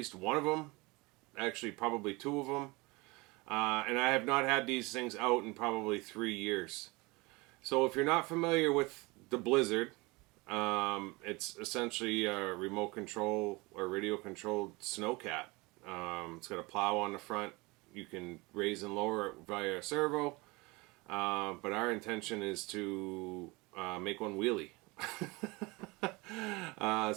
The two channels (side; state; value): left; quieter; 24.8 dB